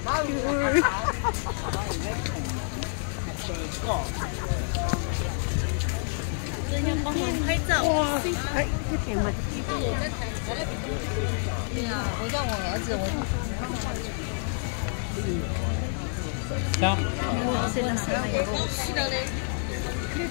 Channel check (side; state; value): right; silent; 59 dB below the other